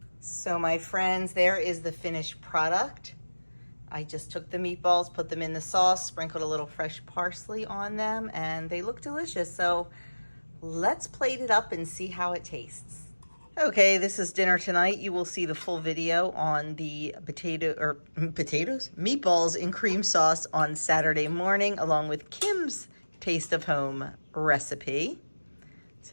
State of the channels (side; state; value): both; inverted; correlation -1.00